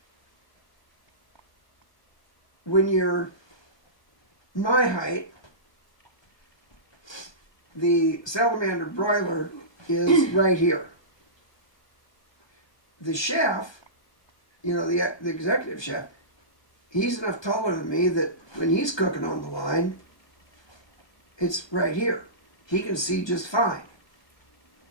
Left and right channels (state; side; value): late; right; 1.2 ms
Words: when you're my height, the salamander broiler is right here. The chef, you know, the executive chef, he's enough taller than me that when he's cooking on the line, it's right here. He can see just fine.